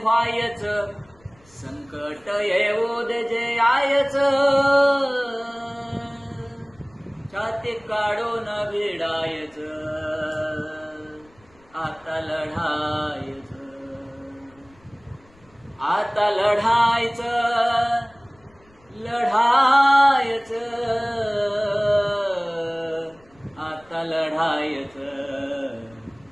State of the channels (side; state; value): left; noise; rumble, 30 dB below the sound